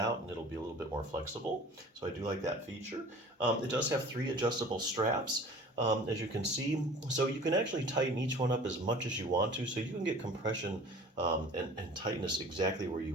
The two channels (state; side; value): normal; both; correlation 0.44